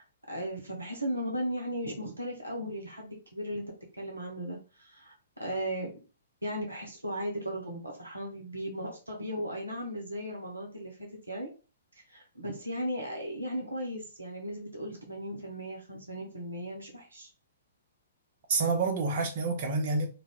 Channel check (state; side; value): inverted; both; correlation -0.59